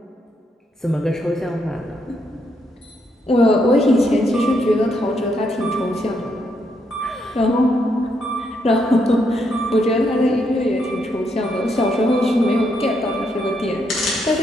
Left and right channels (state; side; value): normal; both; correlation 0.77